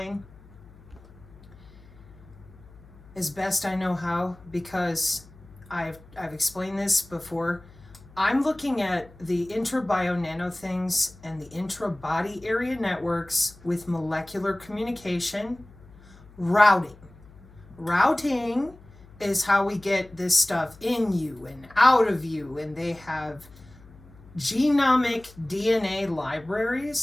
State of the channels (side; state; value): left; noise; hum, 23 dB below the sound